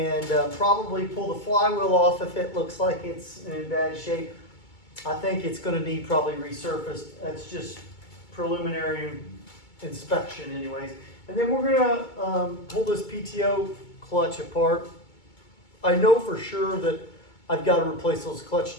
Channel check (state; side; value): late; right; 2.2 ms